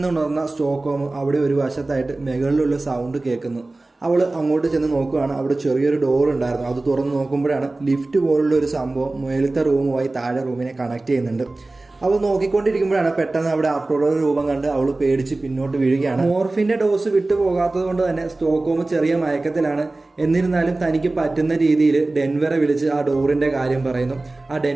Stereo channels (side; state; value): left; quieter; 3.0 dB